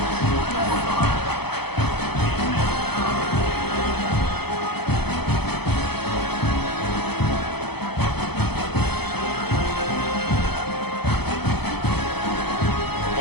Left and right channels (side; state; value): right; late; 0.98 ms